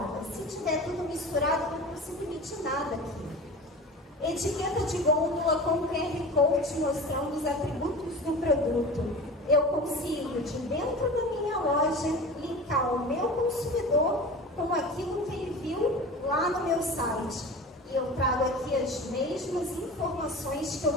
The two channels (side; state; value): both; normal; correlation 0.34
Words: Se tiver tudo misturado, eu não consigo emitir nada aqui. Etiqueta de gôndola com QR Code mostrando os atributos do produto. Eu consigo, de dentro da minha loja, linkar o meu consumidor com aquilo que ele viu lá no meu site. E eu trago aqui as mesmas informações que eu